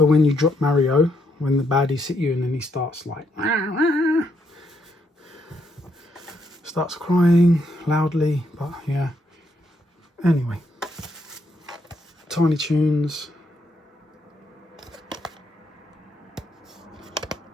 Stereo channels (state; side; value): normal; both; correlation 0.75